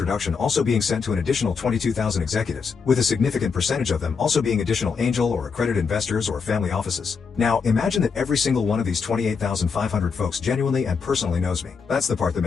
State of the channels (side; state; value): right; quieter; 5.5 dB